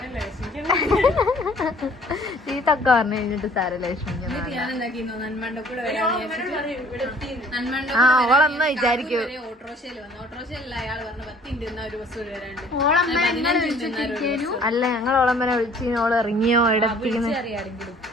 ചീത്തൊക്കെ പറഞ്ഞു കഴിഞ്ഞിട്ട് സാരല്ല ലക്ഷ്മിക്ക്. ആ ഓളമ്മ വിചാരിക്കൂ. അല്ല ഞങ്ങൾ ഓളമ്മനെ വിളിച്ച് ഓള് ഇറങ്ങിയോ എവിടെത്തിക്കുന്നു.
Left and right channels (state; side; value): normal; both; correlation 0.55